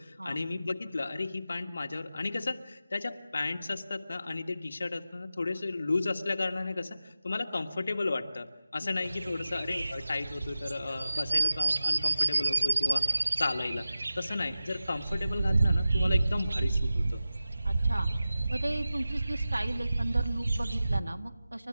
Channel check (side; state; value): both; inverted; correlation -0.94